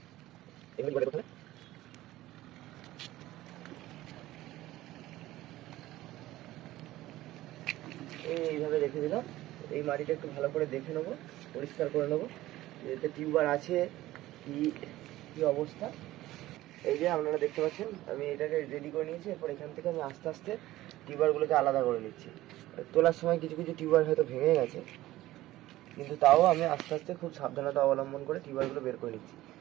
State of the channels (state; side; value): quieter; left; 16.2 dB